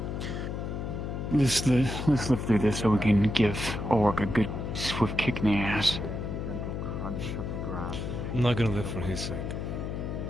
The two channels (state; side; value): noise; left; hum, 4 dB below the sound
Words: Let's live through this so we can give Orc a good swift kick in the ass. Gentle crunch of the grass. I'm not gonna live for his sake.